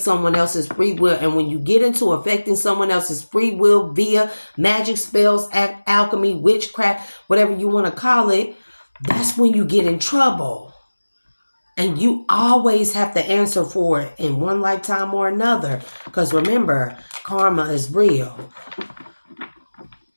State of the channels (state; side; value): inverted; both; correlation -1.00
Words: someone else's free will. And when you get into affecting someone else's free will via magic, spells, alchemy, witchcraft, whatever you want to call it, that's when you get in trouble. And you always have to answer for it in one lifetime or another. Because remember, karma is real.